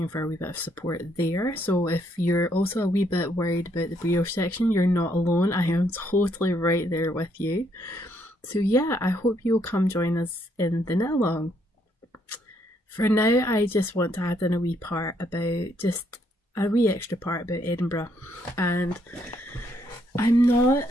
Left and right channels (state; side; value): normal; both; correlation 0.72